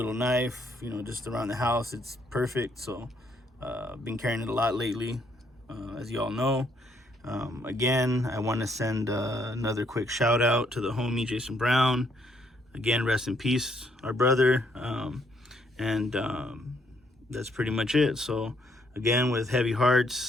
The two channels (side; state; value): both; normal; correlation 0.70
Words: knife, you know, just around the house. It's perfect. So I've been carrying it a lot lately, as you all know. Again, I want to send another quick shout out to the homie Jason Brown. Again, rest in peace, our brother. That's pretty much it. So again, with heavy